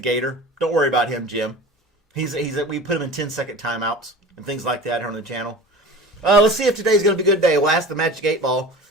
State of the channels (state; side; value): normal; both; correlation 0.37